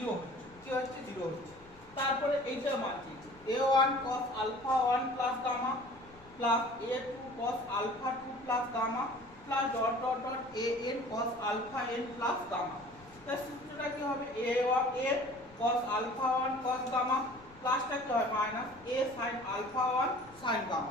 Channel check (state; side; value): noise; left; rumble, 24 dB below the sound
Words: হচ্ছে, কি হচ্ছে 0 হচ্ছে। তারপরে এইটার মান কি a1 cos alpha 1 plus gamma plus a2 cos alpha 2 plus gamma plus dot dot dot an cos alpha n plus gamma। তাহলে সূত্রটা কি হবে a cos alpha 1 cos gamma প্লাসটা কি হয় minus a sin alpha 1 sin